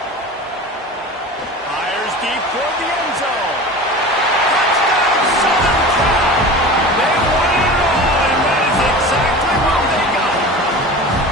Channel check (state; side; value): normal; both; correlation 0.35